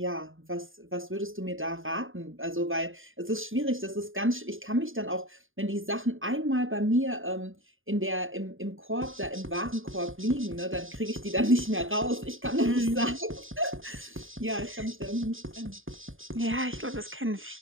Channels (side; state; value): left; late; 0.59 ms